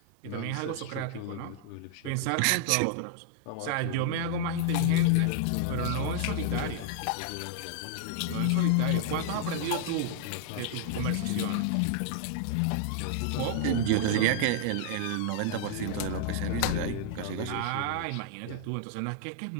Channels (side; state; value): both; different; correlation -0.01